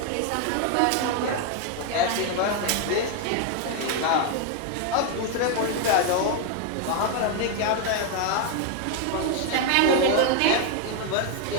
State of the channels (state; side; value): different; both; correlation 0.01